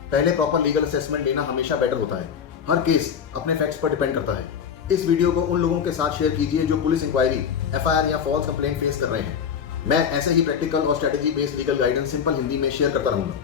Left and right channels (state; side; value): quieter; right; 7.4 dB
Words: पहले प्रॉपर लीगल असेसमेंट लेना हमेशा बेटर होता है। हर केस अपने फैक्ट्स पर डिपेंड करता है। इस वीडियो को उन लोगों के साथ शेयर कीजिए जो पुलिस इंक्वायरी, एफआईआर या फॉल्स कंप्लेंट फेस कर रहे हैं। मैं ऐसे ही प्रैक्टिकल और strategy based legal guidance simple Hindi में शेयर करता